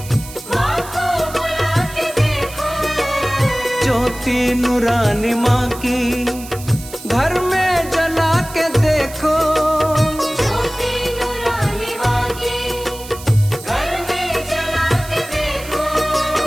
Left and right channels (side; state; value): right; noise; hiss, 15 dB below the sound